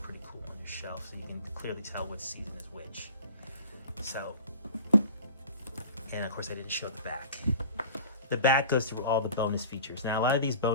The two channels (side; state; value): both; inverted; correlation -0.42